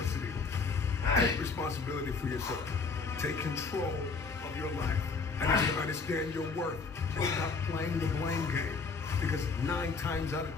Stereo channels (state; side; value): quieter; right; 4.6 dB